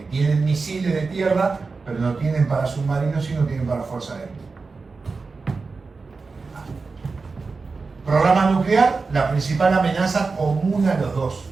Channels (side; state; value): left; quieter; 4.3 dB